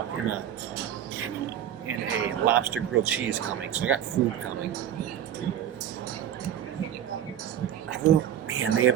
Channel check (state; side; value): quieter; left; 10.2 dB